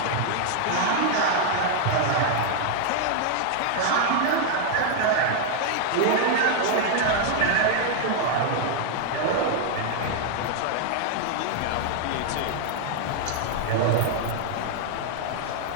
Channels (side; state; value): both; different; correlation 0.00